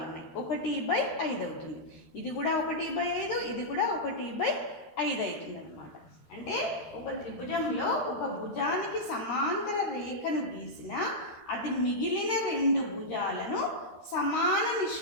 ఉన్నాయి, 1/5 అవుతుంది. ఇది కూడా 1/5, ఇది కూడా 1/5 అవుతుంది అన్నమాట. అంటే ఒక త్రిభుజంలో ఒక భుజానికి సమాంతర రేఖను గీసిన అది మిగిలిన 2 భుజాలను సమాన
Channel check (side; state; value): right; late; 13 ms